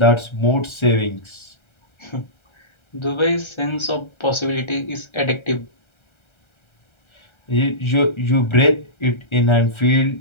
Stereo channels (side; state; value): right; late; 1.3 ms